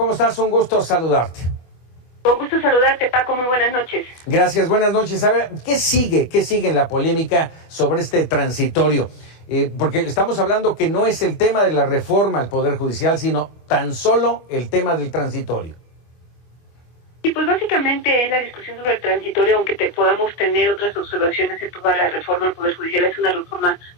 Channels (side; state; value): right; late; 24 ms